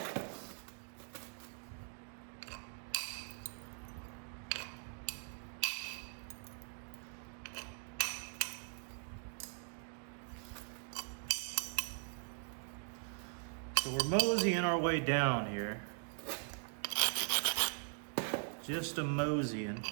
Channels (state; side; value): silent; left; 50 dB below the other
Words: So we're moseying our way down here. Just a moseying.